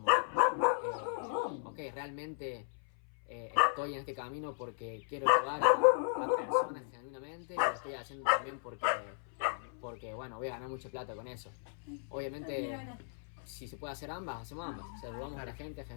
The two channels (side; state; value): right; silent; 54 dB below the other